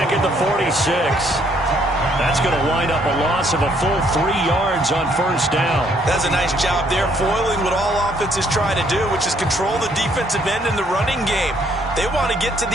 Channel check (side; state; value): both; normal; correlation 0.67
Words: at the 46. That's going to wind up a loss of a full 3 yards on first down. That's a nice job there, foiling what all offenses try to do, which is control the defensive end in the running game. They want to get to